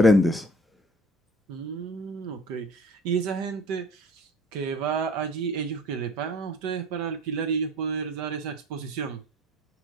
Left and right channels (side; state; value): both; normal; correlation 0.48